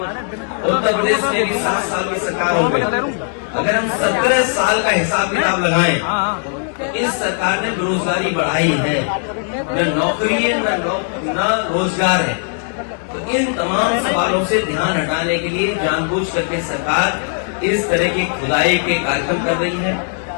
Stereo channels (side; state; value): right; silent; 60 dB below the other